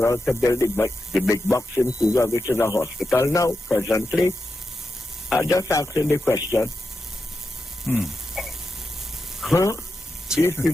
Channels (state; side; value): normal; both; correlation 0.88